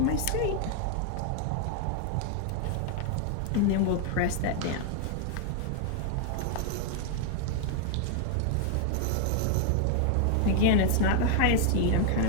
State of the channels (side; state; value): both; different; correlation 0.00